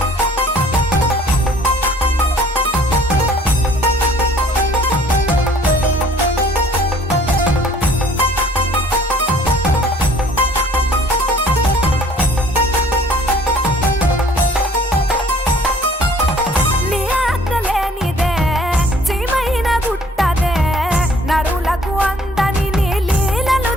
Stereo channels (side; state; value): both; normal; correlation 0.55